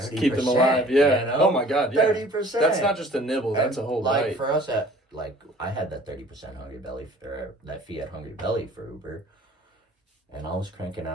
Keep them alive, Oh my God, 30%. That's not just a nibble, that's a whole bite. For us, I had that 30% Hungry Belly, or that fee at Hungry Belly for Uber, and I was cranking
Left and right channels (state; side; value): normal; both; correlation 0.50